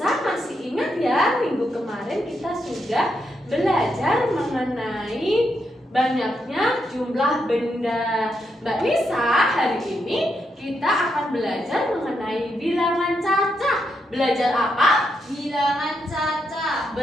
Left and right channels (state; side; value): normal; both; correlation 0.81